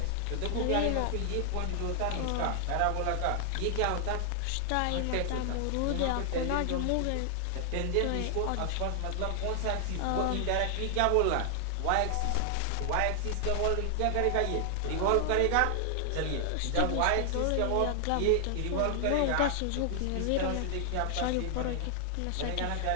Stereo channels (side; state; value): both; different; correlation 0.00